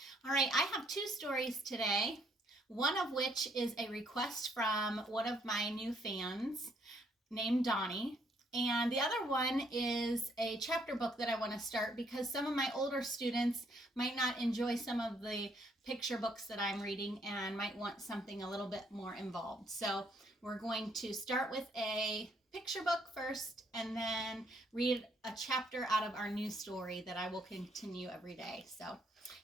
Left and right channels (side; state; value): both; normal; correlation 0.69